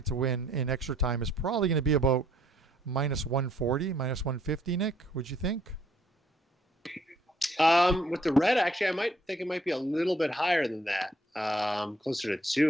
to win in extra time is probably going to be about minus 140, minus 150. Nick, would you think? With the red, actually, I might think it might be a little bit higher than that. Closer to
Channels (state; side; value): normal; both; correlation 0.65